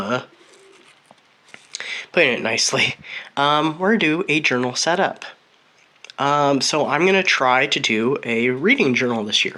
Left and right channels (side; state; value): both; identical; correlation 1.00